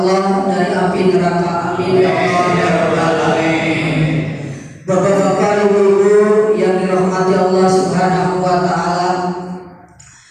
dari api neraka. Amin ya Allah ya Rabbal alamin. Bapak-bapak, ibu-ibu yang dirahmati Allah Subhanahu wa taala,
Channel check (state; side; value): identical; both; correlation 1.00